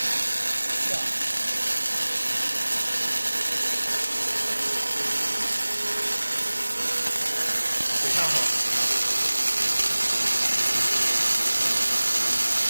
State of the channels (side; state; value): both; inverted; correlation -1.00